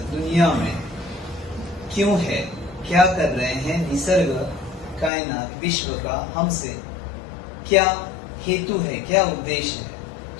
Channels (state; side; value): drops out; right; at 5.1 s